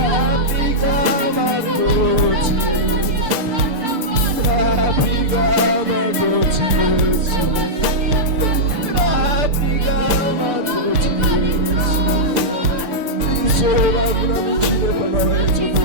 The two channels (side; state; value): left; late; 6.7 ms